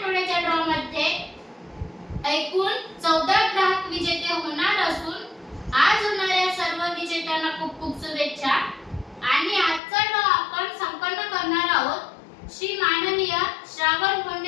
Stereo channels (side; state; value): right; drops out; at 9.8 s